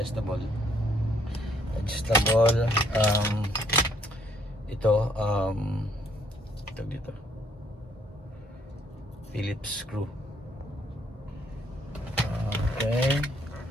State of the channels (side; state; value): both; normal; correlation 0.67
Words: Ito, dito. Phillips screw. Okay.